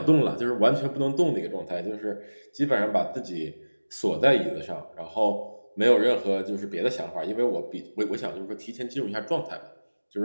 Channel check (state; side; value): inverted; both; correlation -1.00